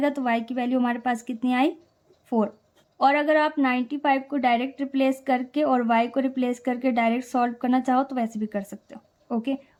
तो y की वैल्यू हमारे पास कितनी आई? 4। और अगर आप 95 को डायरेक्ट रिप्लेस करके और y को रिप्लेस करके डायरेक्ट सॉल्व करना चाहो तो वैसे भी कर सकते हो। ओके,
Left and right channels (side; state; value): both; identical; correlation 1.00